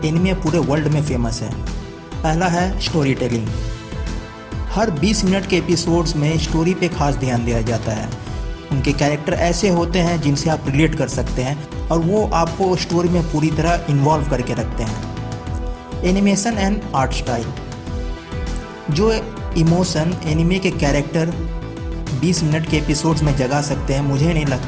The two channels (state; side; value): identical; both; correlation 1.00